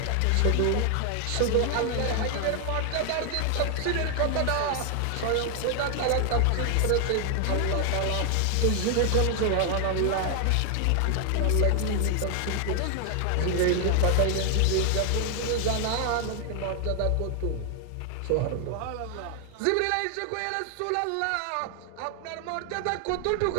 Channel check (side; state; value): both; different; correlation 0.00